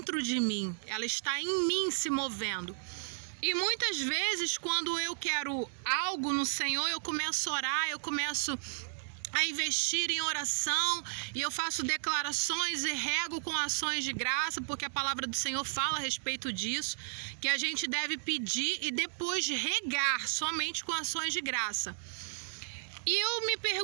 de mim, ela está em mim se movendo. E muitas vezes, quando eu quero algo no Senhor, eu começo a orar, eu começo a investir em oração, e eu faço declarações e rego com ações de graça, porque a palavra do Senhor fala a respeito disso, que a gente deve pedir e depois regar somente com ações de graça. E eu me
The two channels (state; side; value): silent; left; 55 dB below the other